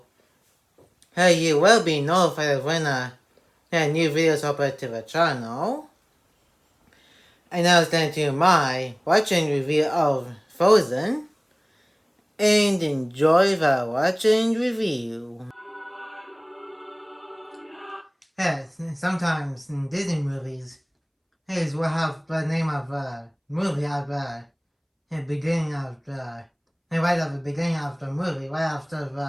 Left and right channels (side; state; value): both; identical; correlation 1.00